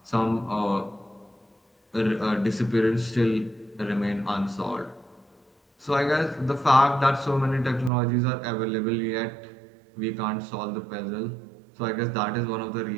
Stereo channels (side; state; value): left; drops out; at 7.9 s